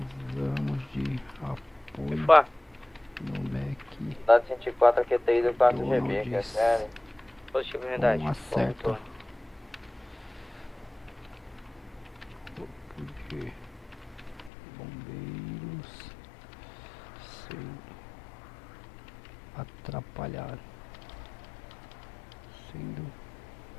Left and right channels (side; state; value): right; drops out; at 14.5 s